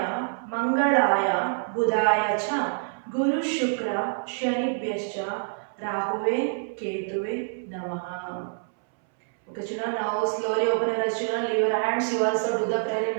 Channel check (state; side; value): silent; left; 61 dB below the other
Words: Mangalaya Budaya cha Guru Shukra Shanibhyascha Rahuve Ketuve Namaha. Okay children, now slowly open your eyes children. Leave your hands. You also do the prayer in